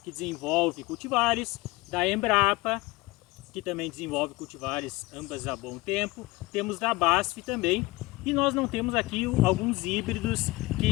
que desenvolve cultivares, da Embrapa, que também desenvolve cultivares ambas há bom tempo, temos da BASF também, e nós não temos aqui alguns híbridos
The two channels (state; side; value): quieter; right; 21.5 dB